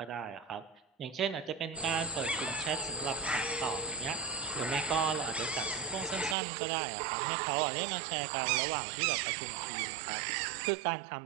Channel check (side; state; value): left; drops out; at 6.4 s